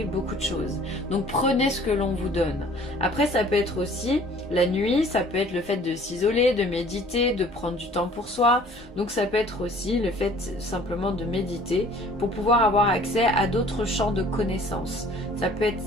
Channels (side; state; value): both; normal; correlation 0.52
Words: beaucoup de choses, donc prenez ce que l'on vous donne. Après, ça peut être aussi la nuit, ça peut être le fait de s'isoler, de méditer, de prendre du temps pour soi. Donc ça peut être aussi le fait simplement de méditer pour pouvoir avoir accès à d'autres champs de connaissances. Ça peut être